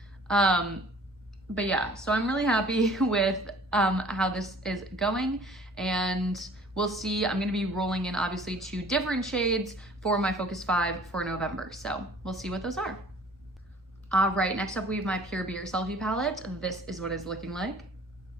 But yeah, so I'm really happy with how this is going, and we'll see. I'm gonna be rolling in obviously 2 different shades for my Focus 5 for November, so we'll see what those are. All right, next up we have my Pure Be Yourself palette. This is what it's looking like.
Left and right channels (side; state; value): both; normal; correlation 0.51